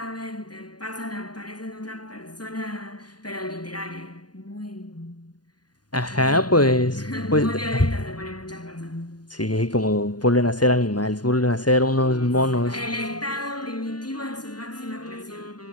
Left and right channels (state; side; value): late; right; 0.70 ms